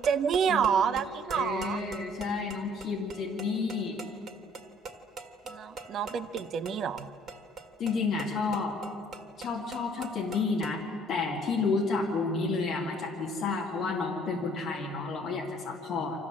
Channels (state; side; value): normal; both; correlation 0.58